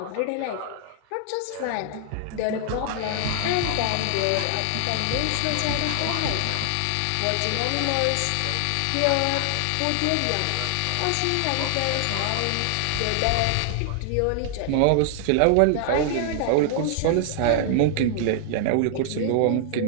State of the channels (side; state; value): both; different; correlation 0.00